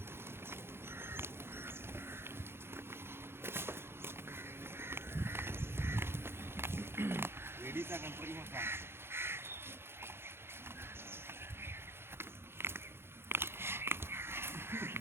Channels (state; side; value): late; left; 0.11 ms